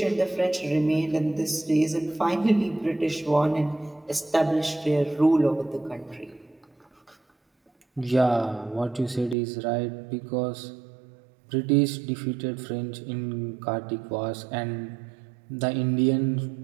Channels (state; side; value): drops out; left; at 9.3 s